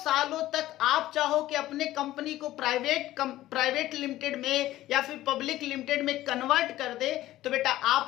तक आप चाहो कि अपने कंपनी को प्राइवेट लिमिटेड में या फिर पब्लिक लिमिटेड में कन्वर्ट कर दे, तो बेटा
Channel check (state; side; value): quieter; right; 15.1 dB